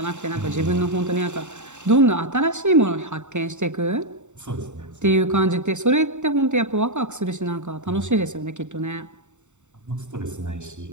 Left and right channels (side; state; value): left; late; 0.84 ms